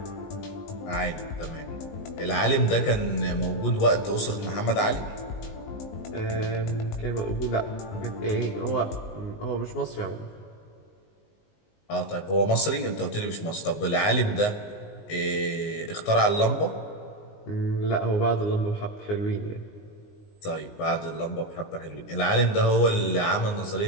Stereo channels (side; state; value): right; late; 19 ms